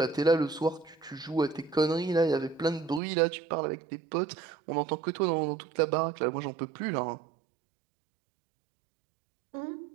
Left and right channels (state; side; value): drops out; left; at 3.0 s